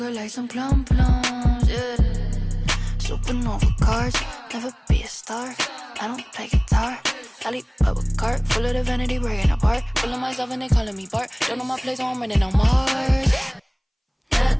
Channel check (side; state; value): both; identical; correlation 1.00